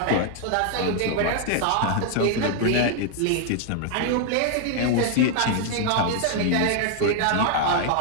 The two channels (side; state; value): both; different; correlation 0.00